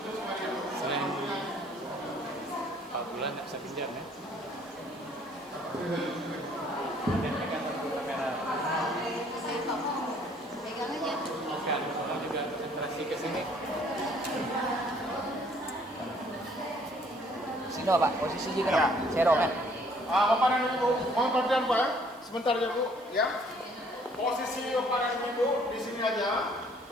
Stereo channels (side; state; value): right; noise; hiss, 27 dB below the sound